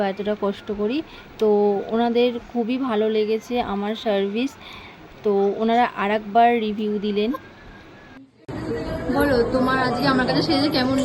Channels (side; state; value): both; identical; correlation 1.00